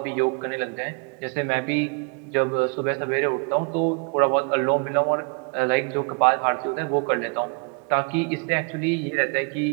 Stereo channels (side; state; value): left; quieter; 36.1 dB